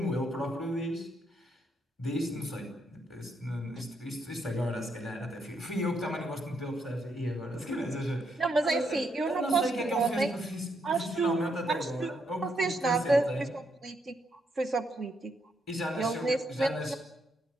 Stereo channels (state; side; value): normal; both; correlation 0.77